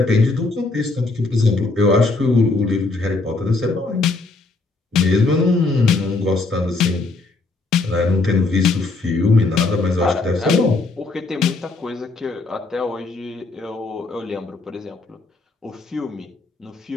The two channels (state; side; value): quieter; right; 3.5 dB